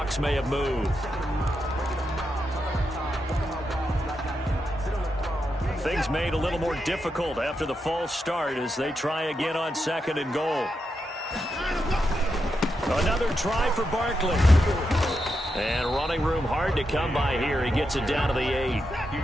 may have moved. Things made a little more difficult after the false start as they try again on 2nd and goal. Another try for Barkley. And running room hard to come by here. He gets it down to the 8.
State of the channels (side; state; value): both; normal; correlation 0.85